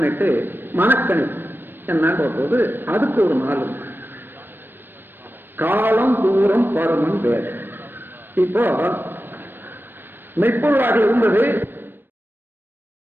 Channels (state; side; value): late; left; 0.096 ms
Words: மனக்கணி என்னன்ற போது அதுக்கு ஒரு நாள் காலம், தூரம், பருமன், வேகம். இப்போ மெய்ப்பொருளாக இருந்தது